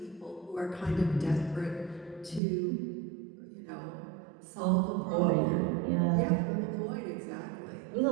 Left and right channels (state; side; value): drops out; left; at 2.4 s